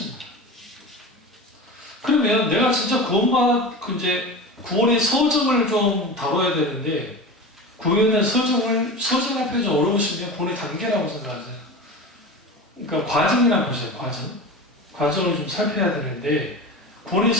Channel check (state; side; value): normal; both; correlation 0.30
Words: 그러면 내가 진짜 구원의 서정을 좀 다뤄야 되는데, 구원의 서정 앞에 좀 어려우시면 구원의 단계라고 생각하세요. 그러니까 과정이라고 보세요, 과정을 좀 살펴야 되는데, 구원의